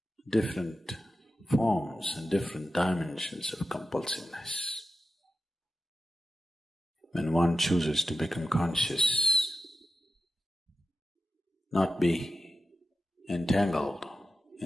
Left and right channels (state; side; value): normal; both; correlation 0.91